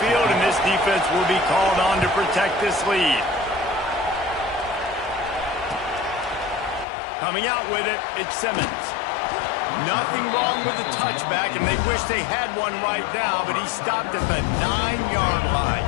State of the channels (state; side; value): drops out; right; at 6.9 s